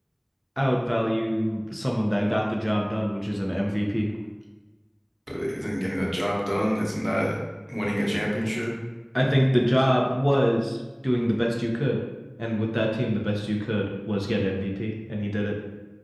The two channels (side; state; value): both; identical; correlation 1.00